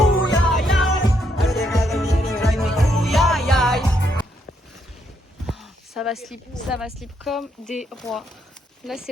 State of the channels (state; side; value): normal; both; correlation 0.75